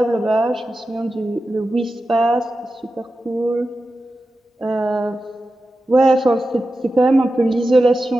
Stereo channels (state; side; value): normal; both; correlation 0.92